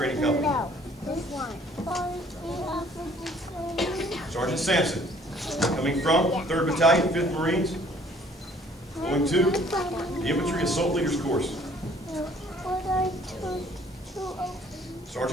Company. Sergeant Sampson, coming from 3rd Battalion, 5th Marines, going to the Infantry Assault Leaders course.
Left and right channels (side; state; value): both; normal; correlation 0.57